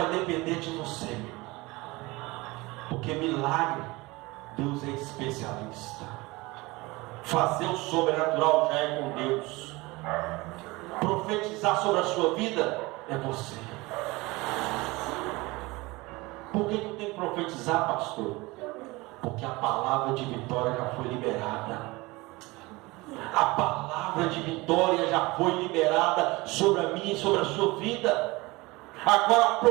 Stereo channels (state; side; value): quieter; left; 22.5 dB